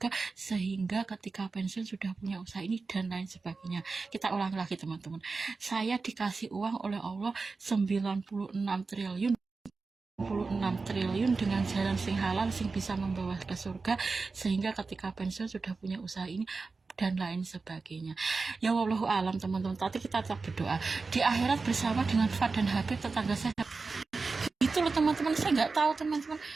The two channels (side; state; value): left; quieter; 4.2 dB